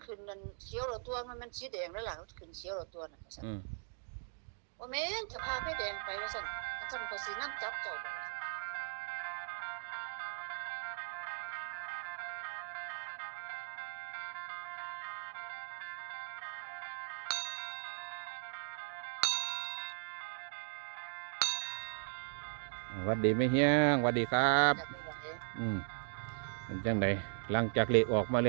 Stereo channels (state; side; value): silent; left; 52 dB below the other